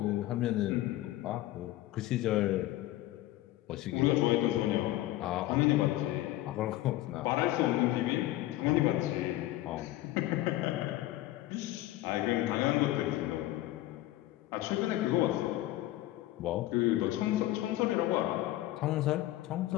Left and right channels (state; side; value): quieter; right; 15.8 dB